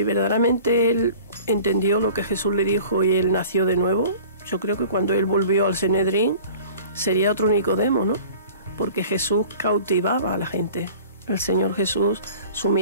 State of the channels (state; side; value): inverted; both; correlation -0.45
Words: verdaderamente él entendió lo que Jesús le dijo y él nació de nuevo, yo creo que cuando él volvió al Sanedrín sería otro Nicodemo, ¿no? Porque Jesús cautivaba a la gente. El Señor Jesús, su